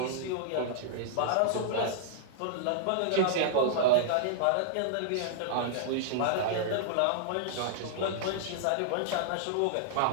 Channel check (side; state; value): both; different; correlation -0.01